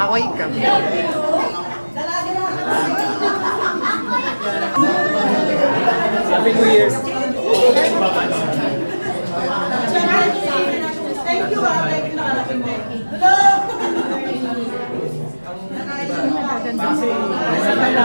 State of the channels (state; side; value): inverted; both; correlation -1.00